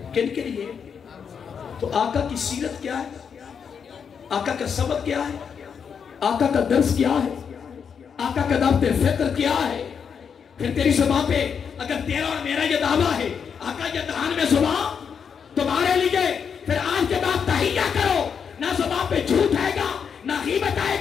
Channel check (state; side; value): quieter; right; 6.8 dB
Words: کن کے لیے؟ تو آقا کی سیرت کیا ہے, آقا کا سبق کیا ہے, آقا کا درس کیا ہے, آقا کا دعوت فکر کیا ہے. پھر تیری زبان پہ اگر تیرا اور میرا یہ دعویٰ ہے آقا یہ دہان میں زبان تمہارے لیے, پھر آج کے بعد تحیہ کرو, نہ زبان پہ جھوٹ آئے گا, نہ غیبت آئے